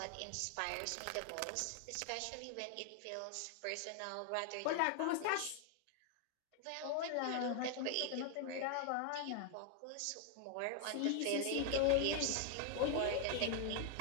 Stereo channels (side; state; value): both; different; correlation 0.00